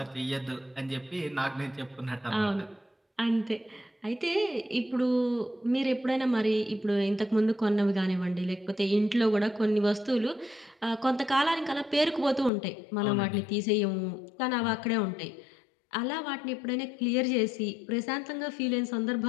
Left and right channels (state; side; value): drops out; right; at 12.5 s